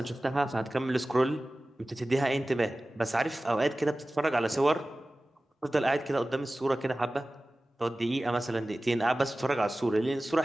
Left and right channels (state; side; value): normal; both; correlation 0.97